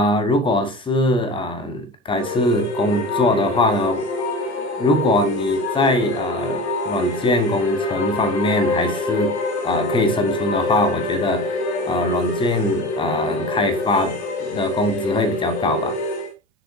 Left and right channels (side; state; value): both; normal; correlation 0.32